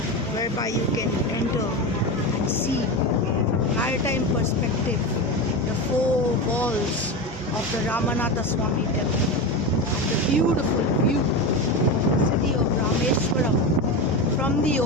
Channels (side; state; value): both; normal; correlation 0.20